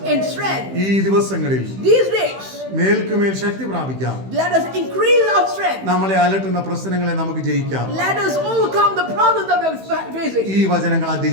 in strength. ഈ ദിവസങ്ങളിൽ These days, മേൽക്കുമേൽ Shakti പ്രാപിക്കാം. let us increase our strength. നമ്മളെ അലട്ടുന്ന പ്രശ്നങ്ങളെ നമുക്ക് ജയിക്കാം. Let us overcome the problems that we are facing. ഈ വചനങ്ങൾ ആ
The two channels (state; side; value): late; left; 15 ms